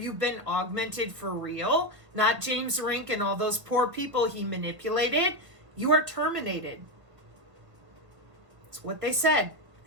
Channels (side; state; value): left; late; 1.3 ms